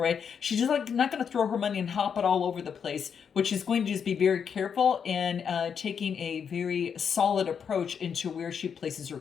right? She's just like not going to throw her money and hop it all over the place, but she's going to just be very careful and taking a very solid approach into where she places her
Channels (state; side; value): quieter; right; 7.1 dB